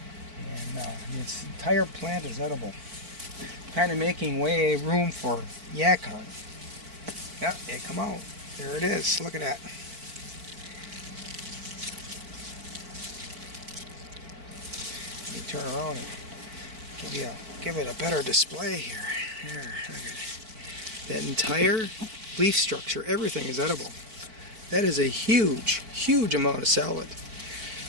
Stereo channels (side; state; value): left; late; 4.5 ms